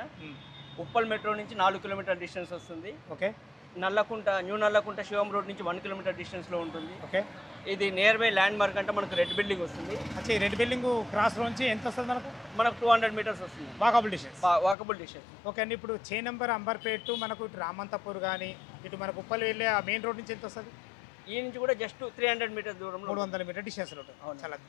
ఉప్పల్ మెట్రో నుంచి 4 కిలోమీటర్ డిస్టెన్స్ వస్తుంది. ఓకే. న్యూ నల్లకుంట శివం రోడ్ నుంచి 1 కిలోమీటర్ డిస్టెన్స్లో ఉంటుంది. ఓకే. ఇది నియర్ బై ల్యాండ్ మార్క్ అంటే మనకు రెడ్ బిల్డింగ్ వస్తుంది. అచ్చా, ఈ రెడ్ బిల్డింగ్ క్రాస్ నుంచి ఎంత వస్తుంది మనకు? మనకు 200 మీటర్స్ వస్తుంది. Walkable distance. Walkable distance. Okay అండి. ఇప్పుడు చే నెంబర్ అంబర్పేట మనకు ఇటు రామంతపూర్ కానీ ఇటు మనకు ఉప్పల్ వెళ్ళే ఆ మెయిన్ రోడ్ నుంచి ఎంత వస్తుంది? ఈ నుంచి కూడా జస్ట్ 300 మీటర్స్ దూరంలో, 300 మీటర్ డిస్టెన్స్లో ఉంటుంది. చాలా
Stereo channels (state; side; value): drops out; right; at 14.8 s